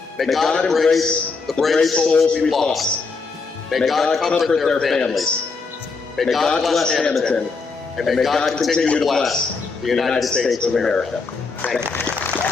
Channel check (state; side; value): quieter; right; 4.4 dB